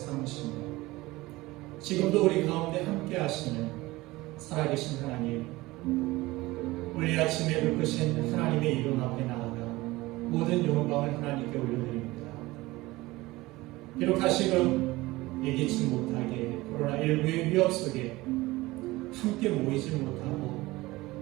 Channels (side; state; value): left; quieter; 19.9 dB